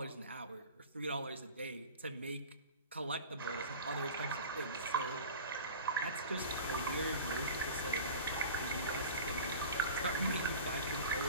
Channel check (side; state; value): both; inverted; correlation -0.36